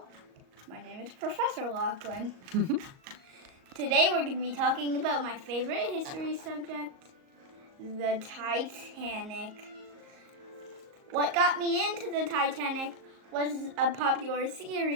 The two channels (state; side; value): late; left; 38 ms